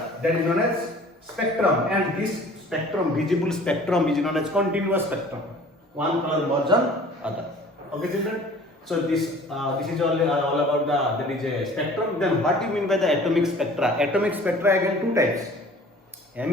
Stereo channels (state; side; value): normal; both; correlation 0.48